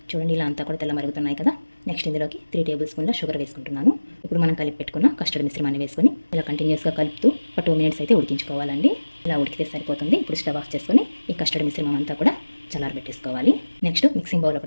చూడండి, ఇలా అంతా కూడా తెల్ల మరుగుతున్నాయి కదా. నెక్స్ట్ ఇందులోకి 3 టేబుల్ స్పూన్ల షుగర్ వేసుకుంటున్నాను. ఇప్పుడు మనం కలిపి పెట్టుకున్న కస్టర్డ్ మిశ్రమాన్ని వేసుకొని ఇలా కంటిన్యూస్గా కలుపుతూ ఒక 2 మినిట్స్ అయితే ఉడికించుకోవాలండి. ఇలా ఉడికితే సరిపోతుంది. ఇప్పుడు స్టవ్ ఆఫ్ చేసుకొని ఈ కస్టర్డ్ మిశ్రమం అంతా కూడా చల్లారబెట్టేసుకోవాలి. నెక్స్ట్ మిక్సింగ్ బౌల్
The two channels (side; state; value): both; inverted; correlation -1.00